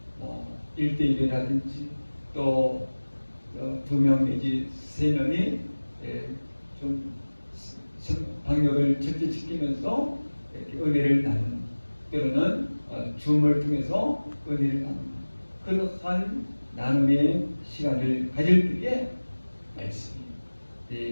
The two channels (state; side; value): inverted; both; correlation -1.00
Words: 1대1이라든지 또 2명 내지 3명이 좀 방역을 절제시키면서 이렇게 은혜를 나누는, 때로는 줌을 통해서 은혜를 나누는 그러한 나눔의 시간을 가질 때에 말씀이